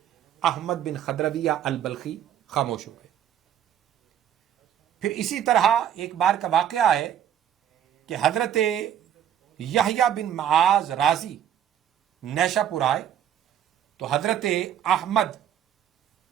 احمد بن خضرویہ البلخی خاموش ہو گئے. پھر اسی طرح ایک بار کا واقعہ ہے کہ حضرت یحییٰ بن معاذ رازی نیشہ پور آئے تو حضرت احمد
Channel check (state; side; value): quieter; left; 9.9 dB